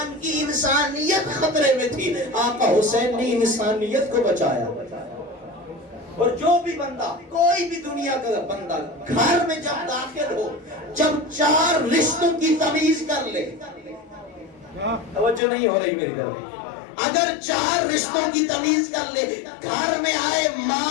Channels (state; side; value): drops out; right; at 15.4 s